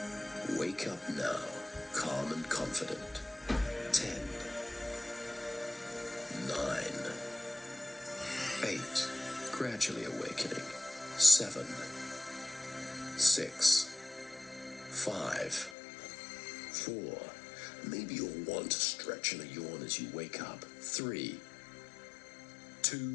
Wake up now, calm and confident. 10, 9, 8, gradually awakening. 7, 6, 5, 4, maybe you'll want to stretch in a yawn as you wake up. 3,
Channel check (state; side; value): drops out; right; at 15.8 s